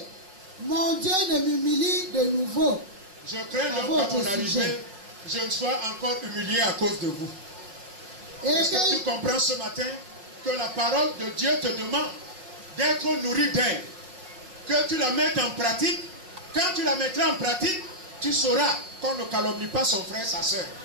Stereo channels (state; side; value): late; left; 5.3 ms